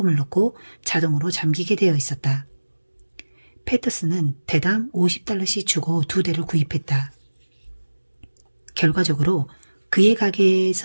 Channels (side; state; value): both; inverted; correlation -1.00